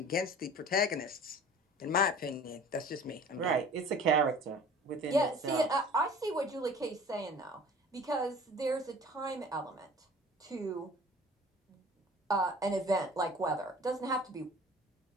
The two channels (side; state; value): both; normal; correlation 0.45